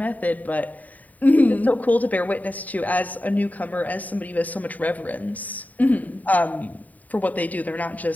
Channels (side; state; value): right; late; 0.075 ms